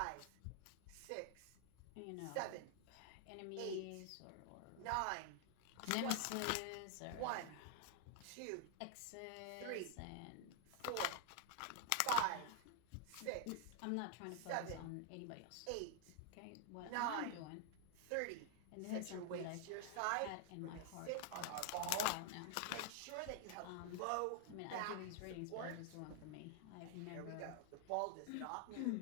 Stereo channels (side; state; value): both; different; correlation 0.00